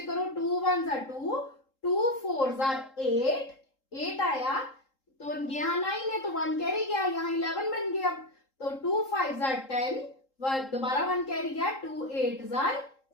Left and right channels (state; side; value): late; right; 3.8 ms